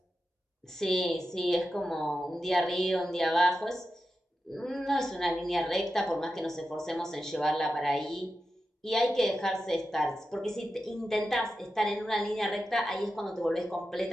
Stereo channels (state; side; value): normal; both; correlation 0.90